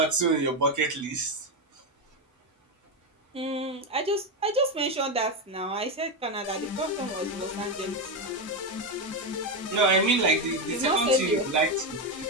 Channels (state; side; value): normal; both; correlation 0.10